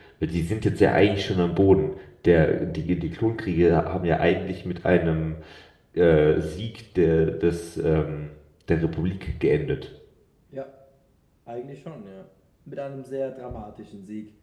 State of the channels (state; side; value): identical; both; correlation 1.00